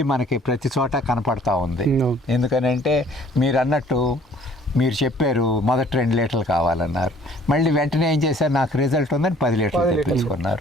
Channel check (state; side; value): normal; both; correlation 0.55